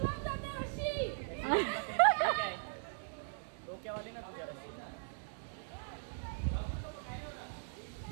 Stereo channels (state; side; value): silent; left; digital silence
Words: डोक्यावाली ना तुझ्या.